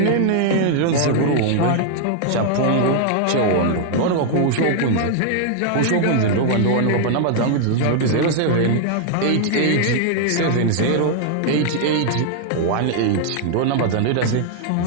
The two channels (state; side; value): different; both; correlation 0.00